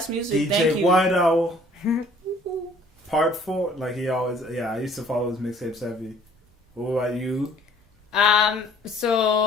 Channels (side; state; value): both; normal; correlation 0.56